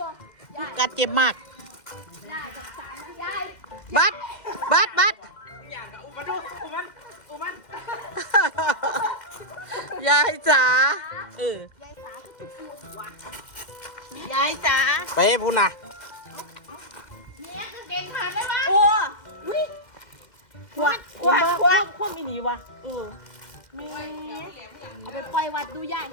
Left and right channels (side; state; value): right; late; 2.1 ms